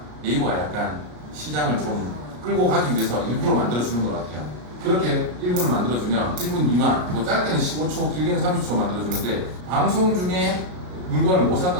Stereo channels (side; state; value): left; late; 33 ms